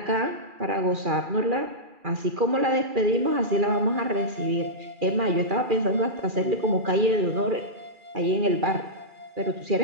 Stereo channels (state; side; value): late; left; 2.4 ms